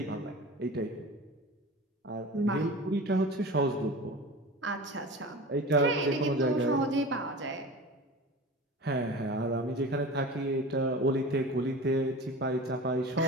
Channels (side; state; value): both; normal; correlation 0.34